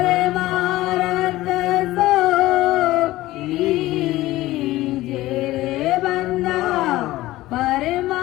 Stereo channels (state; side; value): quieter; right; 17.1 dB